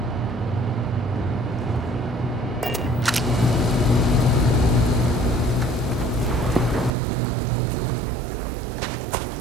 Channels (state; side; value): drops out; left; at 6.9 s